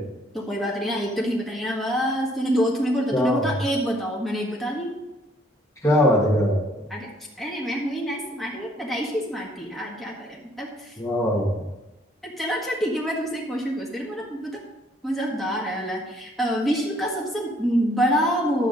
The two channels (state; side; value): normal; both; correlation 0.64